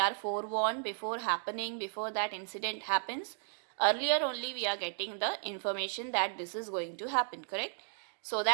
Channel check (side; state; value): left; silent; digital silence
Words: forewarned before happening, before that incident happens. Earlier only we are getting the information that this is going to happen, correct? So